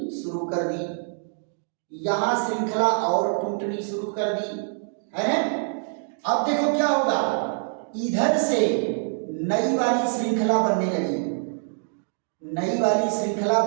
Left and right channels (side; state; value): left; silent; digital silence